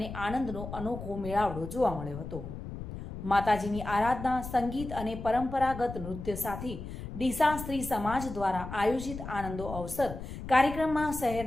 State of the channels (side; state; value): left; noise; rumble, 9 dB below the sound